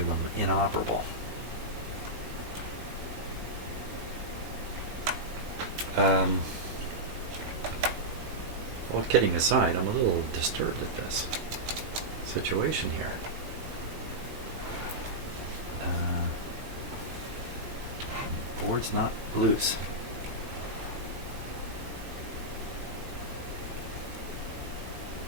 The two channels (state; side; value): late; left; 18 ms